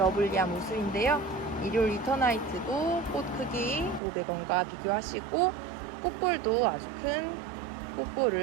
모습인데요. 이리올 리터나이트도 꽃 크기 500원과 비교하시고 꽃볼도 아주 큰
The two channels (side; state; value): left; drops out; at 4.0 s